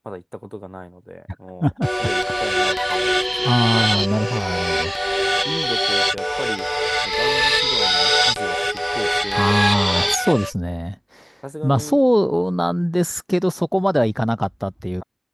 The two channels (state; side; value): identical; both; correlation 1.00